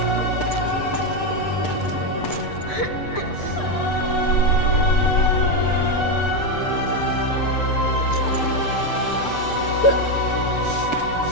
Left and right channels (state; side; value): late; right; 6.7 ms